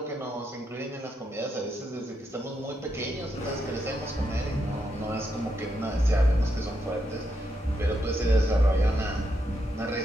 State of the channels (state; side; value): normal; both; correlation 0.81